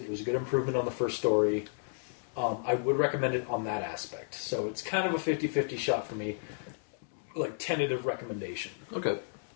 It was a good improvement on the first story. I would recommend it on that aspect. So it's kind of a 50-50 shot for me. Like tentative recommendation. Okay,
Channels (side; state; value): right; silent; digital silence